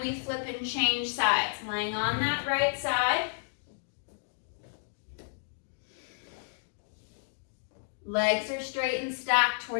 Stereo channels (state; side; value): silent; right; digital silence